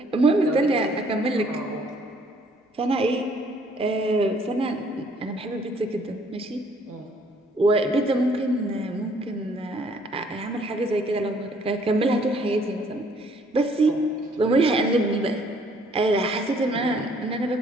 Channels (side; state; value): both; normal; correlation 0.63